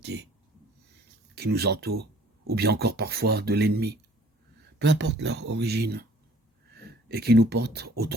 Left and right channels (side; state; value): both; normal; correlation 0.54